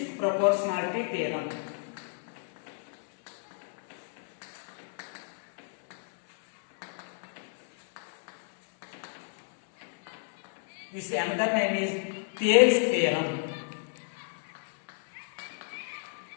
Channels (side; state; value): right; silent; 57 dB below the other